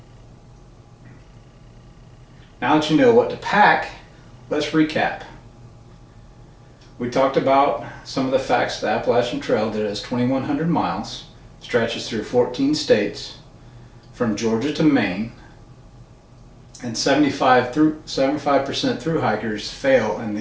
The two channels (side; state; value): both; identical; correlation 1.00